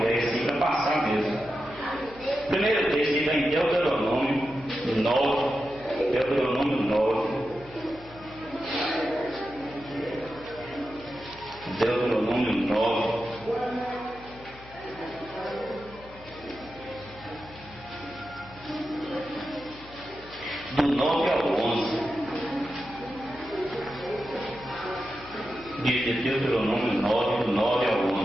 ideia assim para passar mesmo. Primeiro texto está em Deuteronômio 9. Deuteronômio 9. Deuteronômio 9. Do 9 ao 11. De Deuteronômio 9, do 9 ao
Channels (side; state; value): left; noise; hum, 20 dB below the sound